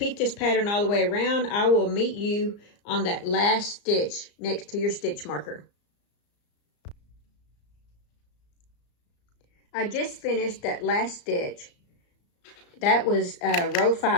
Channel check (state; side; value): late; right; 34 ms